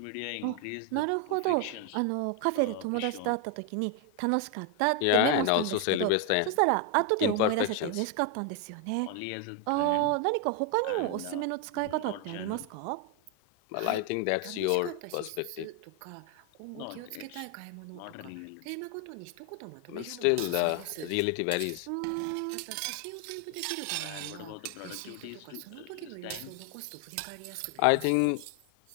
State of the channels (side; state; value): both; different; correlation 0.01